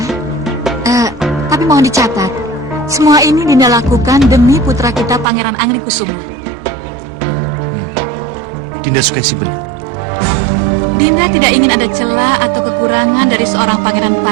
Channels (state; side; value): drops out; left; at 5.2 s